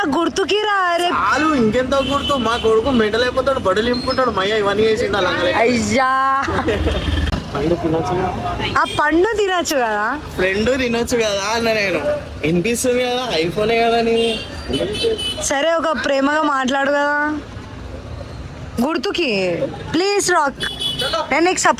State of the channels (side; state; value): both; identical; correlation 1.00